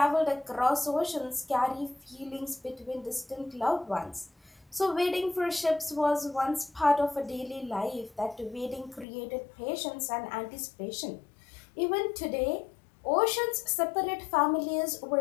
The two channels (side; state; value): right; drops out; at 9.1 s